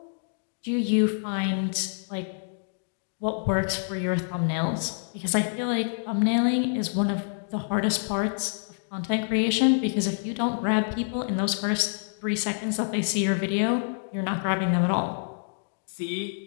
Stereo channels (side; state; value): right; silent; digital silence